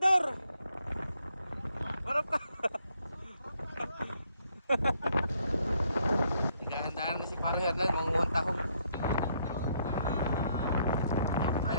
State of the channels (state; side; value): inverted; both; correlation -0.70